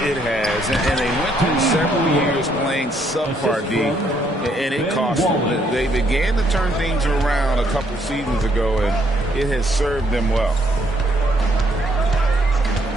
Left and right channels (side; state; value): both; normal; correlation 0.70